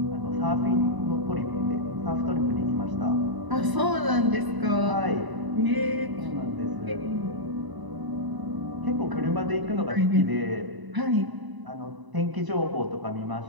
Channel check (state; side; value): late; left; 1.0 ms